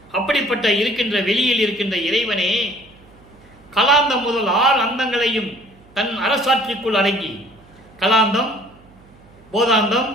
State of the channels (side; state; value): right; noise; hum, 27 dB below the sound